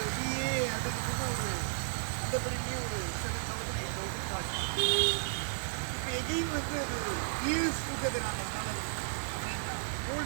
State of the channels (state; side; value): silent; left; 55 dB below the other